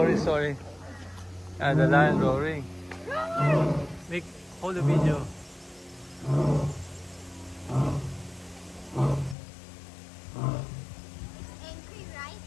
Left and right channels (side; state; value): right; drops out; at 9.3 s